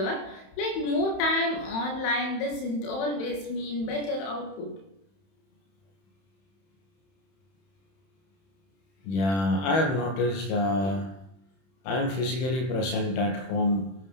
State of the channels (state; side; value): late; right; 31 ms